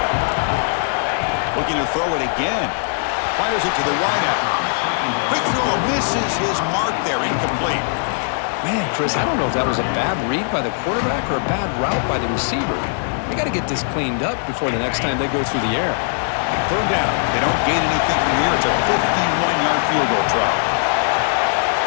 Looking to throw it again. Fires it to the wideout. Quick throw misses his mark there. Incomplete. Man, Chris, I don't know if that was a bad read by the quarterback or a bad route by the receiver. They got to get this cleaned up before the next time they go through the air. Third down. They don't gain anything from here. It's a 51-yard field goal try.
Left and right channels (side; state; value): right; silent; digital silence